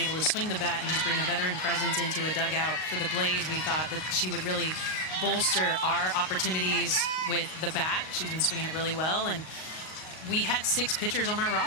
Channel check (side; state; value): right; late; 38 ms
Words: to swing the bat and just bring a veteran presence into a dugout for the Blaze. We thought that she would really bolster our opportunities with the bat. She's been swinging it really well, and we had 6 pitchers on our